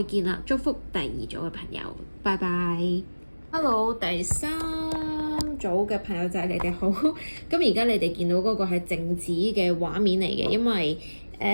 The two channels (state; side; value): inverted; both; correlation -1.00